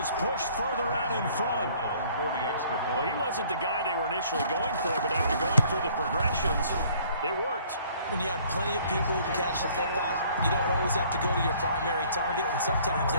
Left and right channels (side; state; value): both; inverted; correlation -0.57